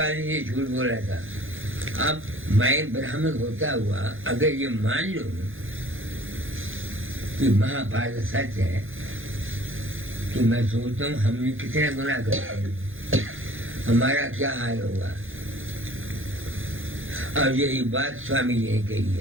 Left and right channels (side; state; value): left; late; 0.59 ms